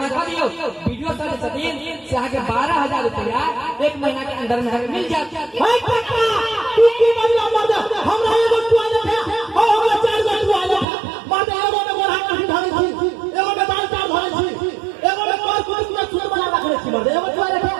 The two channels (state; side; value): drops out; left; at 10.9 s